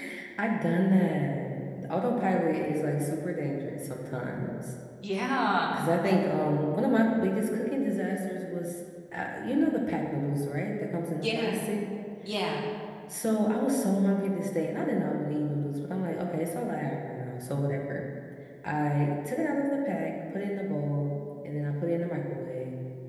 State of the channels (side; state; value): both; identical; correlation 1.00